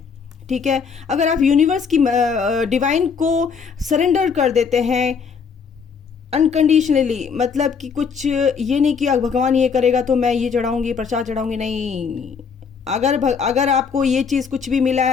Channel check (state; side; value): quieter; right; 6.0 dB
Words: ठीक है? अगर आप यूनिवर्स की डिवाइन को सरेंडर कर देते हैं अनकंडीशनली, मतलब कि कुछ ये नहीं कि भगवान ये करेगा तो मैं ये चढ़ाऊंगी, प्रसाद चढ़ाऊंगी, नहीं। अगर आपको ये चीज़ कुछ भी मिला